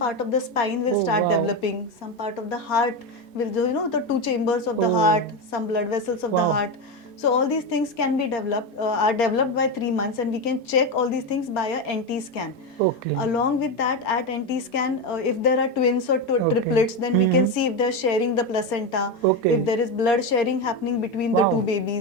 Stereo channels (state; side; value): normal; both; correlation 0.14